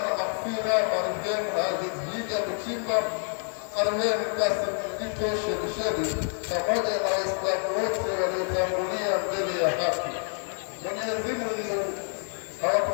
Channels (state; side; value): silent; right; 60 dB below the other